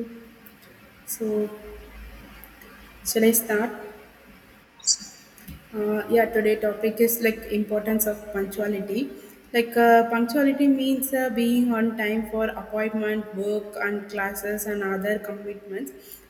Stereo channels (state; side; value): identical; both; correlation 1.00